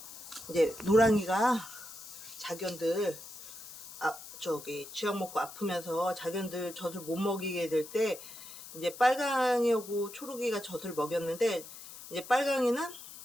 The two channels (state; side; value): noise; left; hiss, 14 dB below the sound